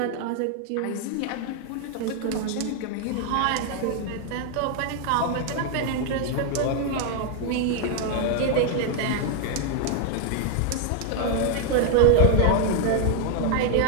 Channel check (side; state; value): both; different; correlation 0.00